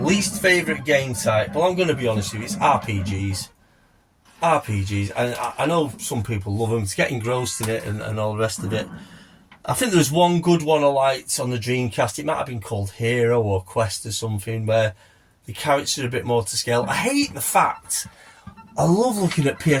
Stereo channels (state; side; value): identical; both; correlation 1.00